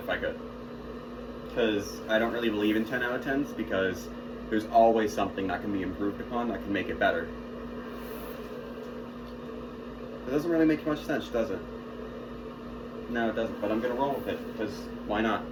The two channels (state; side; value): identical; both; correlation 1.00